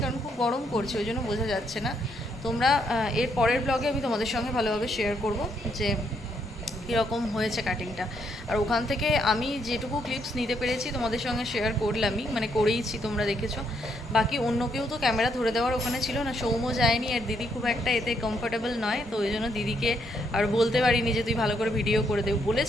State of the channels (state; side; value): normal; both; correlation 0.74